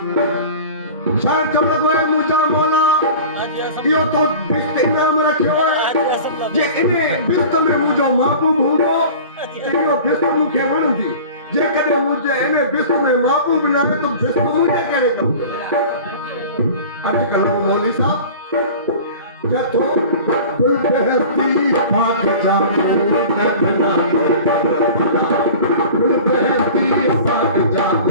शायद जब लॻो आहे मुंहिंजा मौला इहो तो बिस्त इनाम रखियो आहे जे इन बिस्त में मुंहिंजो महबूब हूंदो त इहो बिस्त मूंखे वणंदी। जेकॾहिं मुंहिंजे इन बिस्त में महबूब न आहे त बिस्त मुंहिंजे कहिड़े कम जो। अॼुकल्ह मौली साहब जथो गुल बहती पाक जामो लगना गुल बहती पाक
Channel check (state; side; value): inverted; both; correlation -0.39